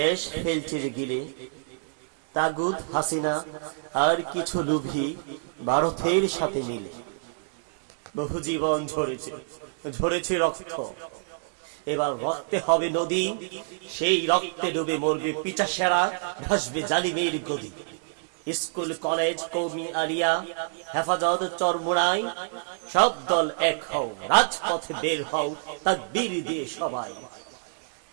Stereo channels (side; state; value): left; silent; digital silence